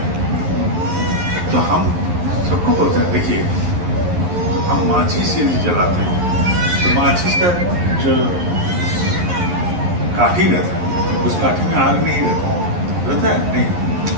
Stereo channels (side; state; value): left; late; 11 ms